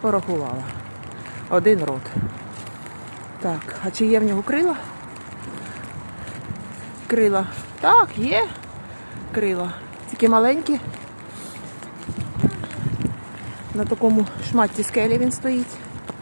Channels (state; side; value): inverted; both; correlation -1.00